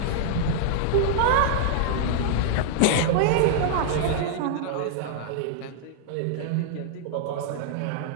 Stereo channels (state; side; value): different; both; correlation -0.01